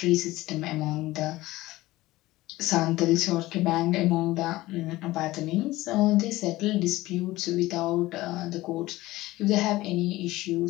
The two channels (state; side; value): quieter; right; 18.0 dB